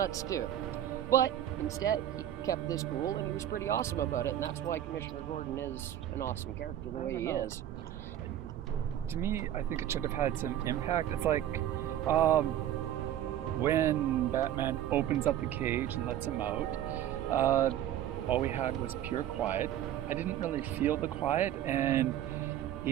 too. But instead, he kept this cool, and he was pretty awesome about it, and that's why Commissioner Gordon is an awesome character the way he is. To me, I think it should have had some impact. It's like when Batman opens up the cage and lets him out, all we had was pure quiet. I didn't really feel the quiet, and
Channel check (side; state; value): left; quieter; 11.6 dB